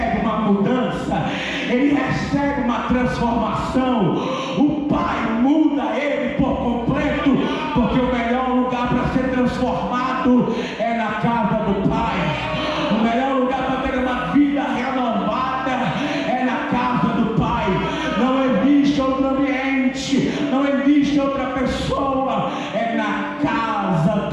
uma mudança, ele recebe uma transformação. O Pai muda ele por completo, porque o melhor lugar para ser transformado é na casa do Pai. O melhor lugar para ter uma vida renovada é na casa do Pai. Não existe outro ambiente, não existe outra pessoa, é na casa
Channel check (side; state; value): both; identical; correlation 1.00